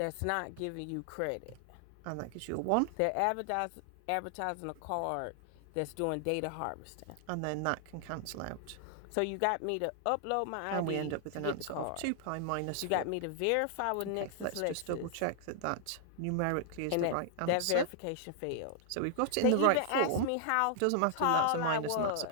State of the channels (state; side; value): different; both; correlation 0.00